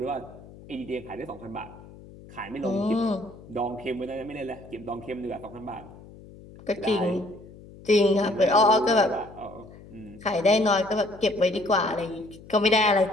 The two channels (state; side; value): noise; left; hum, 19 dB below the sound